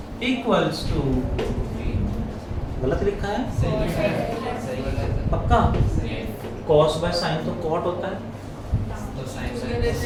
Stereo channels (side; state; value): both; identical; correlation 1.00